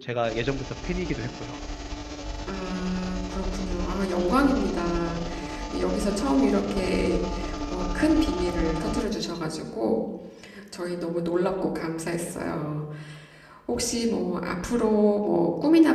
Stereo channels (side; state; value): both; identical; correlation 1.00